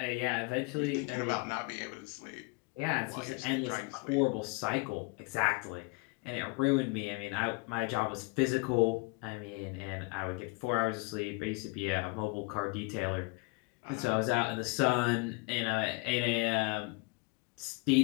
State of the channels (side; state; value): right; quieter; 28.7 dB